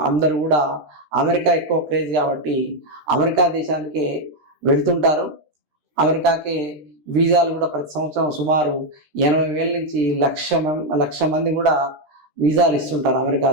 అందరూ కూడా అమెరికా ఎక్కువ క్రేజ్ కాబట్టి అమెరికా దేశానికి వెళ్తుంటారు. అమెరికాకి వీసాలు కూడా ప్రతి సంవత్సరం సుమారు 80,000 నుంచి 1,00,000 మంది కూడా వీసాలు ఇస్తుంటారు అమెరికా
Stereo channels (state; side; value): late; left; 13 ms